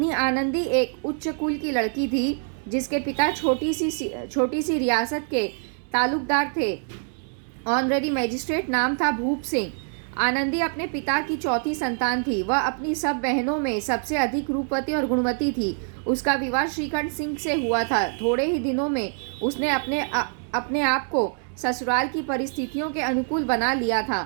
आनंदी एक उच्च कुल की लड़की थी, जिसके पिता छोटी सी रियासत के तालुकदार थे। ऑनरेरी मजिस्ट्रेट नाम था भूप सिंह। आनंदी अपने पिता की चौथी संतान थी। वह अपनी सब बहनों में सबसे अधिक रूपवती और गुणवती थी। उसका विवाह श्रीकंठ सिंह से हुआ था। थोड़े ही दिनों में उसने अपने आप को ससुराल की परिस्थितियों के अनुकूल बना लिया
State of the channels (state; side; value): silent; left; 57 dB below the other